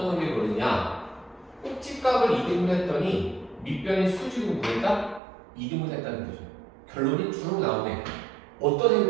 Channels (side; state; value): left; drops out; at 5.2 s